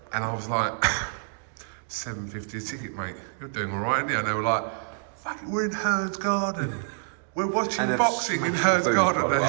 and I was like, $7.50 a ticket, mate. You're doing all right, aren't you? And they were like, fucking, we're in HEARN's garden. We're watching boxing in HEARN's garden.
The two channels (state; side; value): silent; left; digital silence